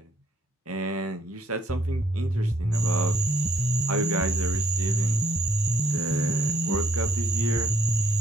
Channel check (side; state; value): both; normal; correlation 0.67